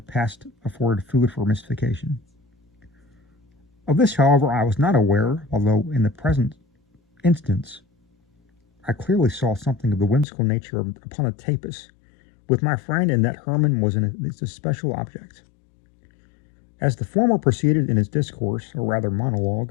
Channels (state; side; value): drops out; right; at 10.2 s